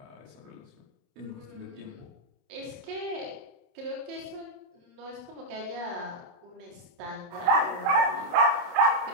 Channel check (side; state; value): left; late; 28 ms